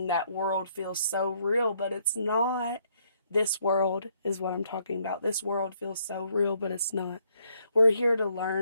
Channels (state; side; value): inverted; both; correlation -0.70